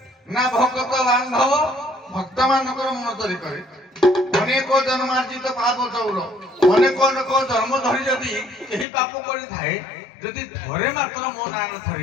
ନା ଭଗତ ବାନ୍ଧବ ଭକ୍ତ ମାନଙ୍କର ମନ ଚୋରି କରେ ଅନେକ ଜନ୍ମାର୍ଜିତ ପାପ ଚୌର ଅନେକ ଅନେକ ଜନ୍ମ ଧରି ଯଦି କେହି ପାପ କରିଥାଏ ଯଦି ଥରେ ମାତ୍ର ମୋ ନାଁ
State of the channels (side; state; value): right; drops out; at 8.8 s